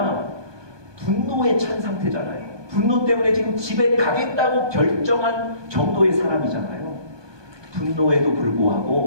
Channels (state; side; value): late; left; 1.2 ms